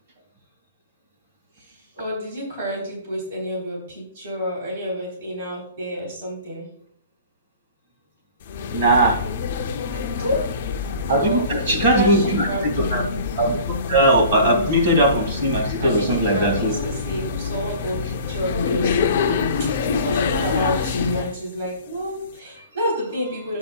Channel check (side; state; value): both; inverted; correlation -0.44